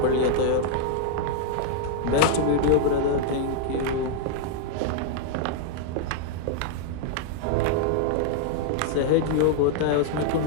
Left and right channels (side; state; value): both; different; correlation -0.01